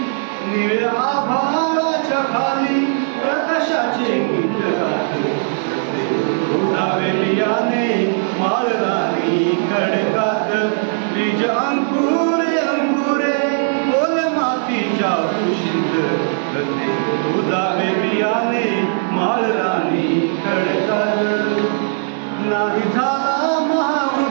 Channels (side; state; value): left; silent; digital silence